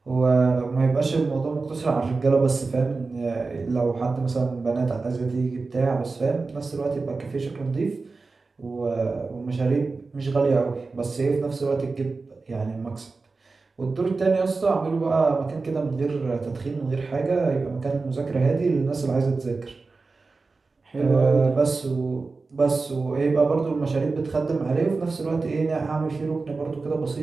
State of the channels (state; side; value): quieter; left; 4.0 dB